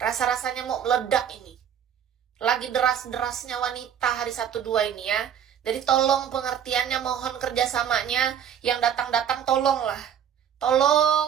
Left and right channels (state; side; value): quieter; left; 8.9 dB